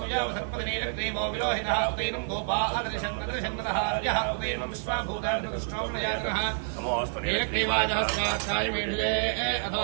विलोहितः उदैनं गोपा अदृशन्नदृशन्नदहार्यः उदैनं विश्वाभूतानृष्टोमयातनः नीरक्रीवादहस्तार्थाय मेढुजे अथो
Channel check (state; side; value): silent; left; digital silence